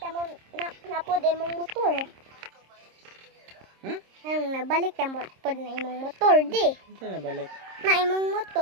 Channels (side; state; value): left; late; 26 ms